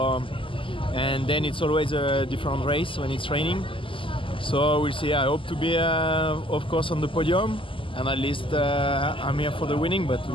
and then it's always a different race when it's raining. So we'll see. I hope to be, of course, on the podium, and at least I'm here for the winning. But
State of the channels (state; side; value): late; right; 0.25 ms